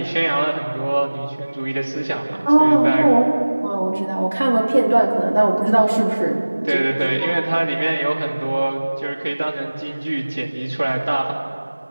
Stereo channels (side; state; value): both; inverted; correlation -1.00